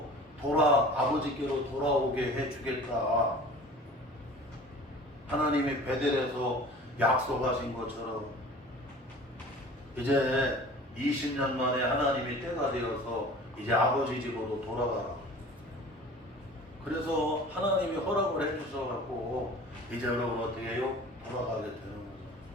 아버지께로 돌아오게 해주겠다. 하나님이 베델에서 약속하신 것처럼 이제 20년 만에 하나님이 때가 되어서 이제 아버지 집으로 돌아가라. 그래서 하나님이 허락을 해주셔갖고 이제 여러분 어떻게 해요? 돌아가게 되는 거죠.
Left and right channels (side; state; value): both; normal; correlation 0.43